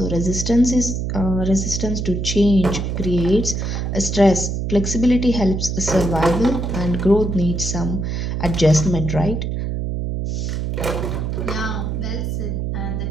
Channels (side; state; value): right; noise; hum, 2 dB below the sound